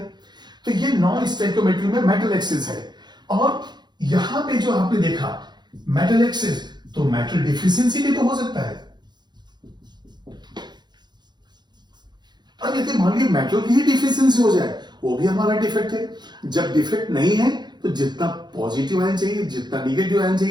तो ये नॉन स्टोइकोमेट्री में मेटल एक्सेस है। और यहां पे जो आपने देखा मेटल एक्सेस, तो मेटल डिफिशियंसी भी तो हो सकता है। अब यदि मान लीजिए मेटल की ही डिफिशियंसी हो जाए, वो भी हमारा डिफेक्ट है। जब डिफेक्ट नहीं है तो जितना पॉजिटिव आयन चाहिए, जितना निगेटिव आयन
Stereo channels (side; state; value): left; late; 0.21 ms